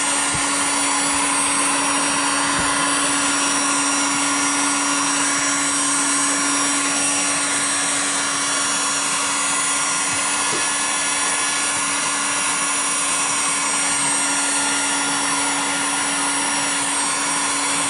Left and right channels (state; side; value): identical; both; correlation 1.00